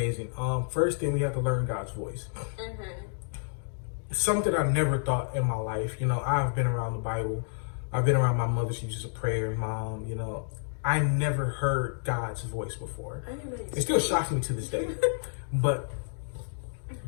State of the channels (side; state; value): right; silent; digital silence